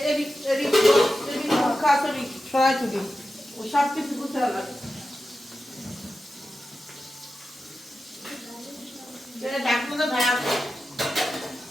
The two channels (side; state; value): both; normal; correlation 0.92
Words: এদিক এদিক এদিক খাসরি সরাই তুলি ও সব কিছু বুঝতে লাগে। ডাকনা তো ভাই